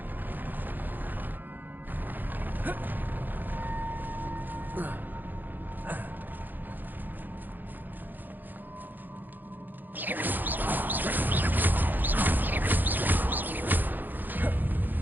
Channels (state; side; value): late; left; 0.087 ms